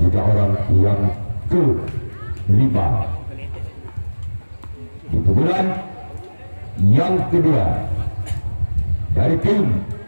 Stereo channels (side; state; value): both; inverted; correlation -1.00